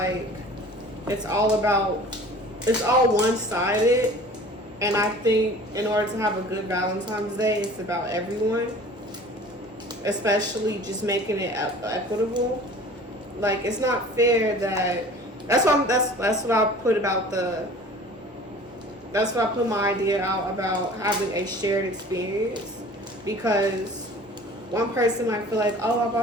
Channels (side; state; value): both; normal; correlation 0.44